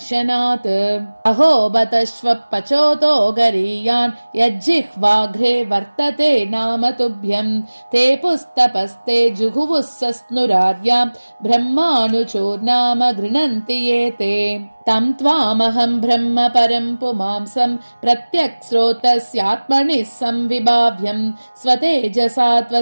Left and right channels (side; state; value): both; inverted; correlation -1.00